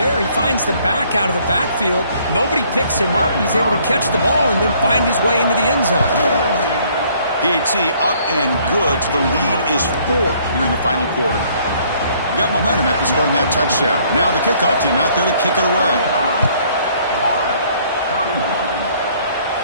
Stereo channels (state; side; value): inverted; both; correlation -0.62